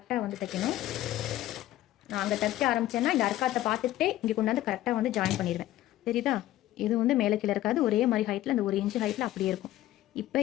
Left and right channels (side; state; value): right; quieter; 14.4 dB